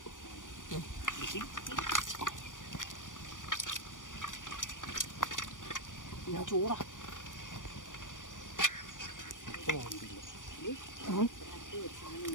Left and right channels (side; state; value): right; late; 0.88 ms